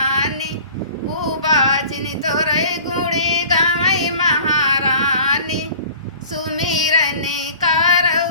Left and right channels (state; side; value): inverted; both; correlation -0.45